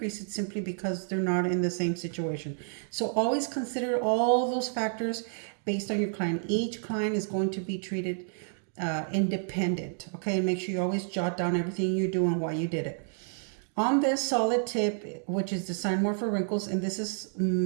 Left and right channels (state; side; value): silent; left; digital silence